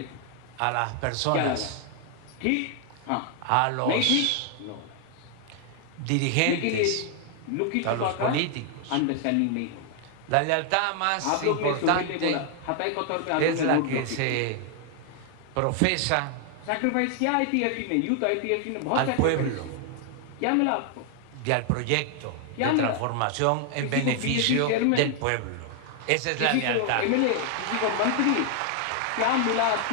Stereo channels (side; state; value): both; different; correlation 0.00